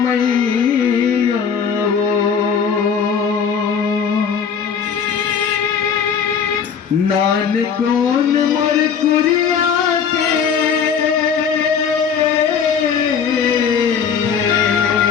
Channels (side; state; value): right; quieter; 6.9 dB